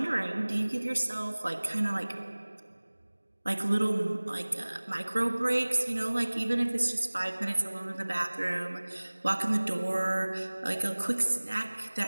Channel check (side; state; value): both; inverted; correlation -1.00